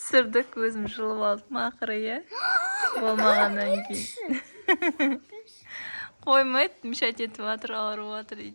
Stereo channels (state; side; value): inverted; both; correlation -1.00